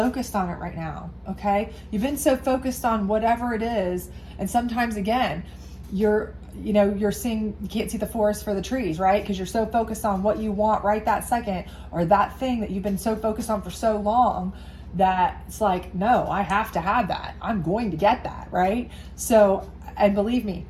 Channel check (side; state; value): both; identical; correlation 1.00